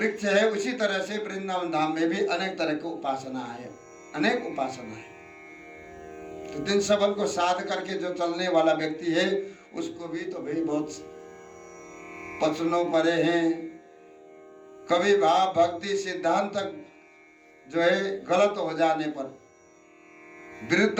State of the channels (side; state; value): both; identical; correlation 1.00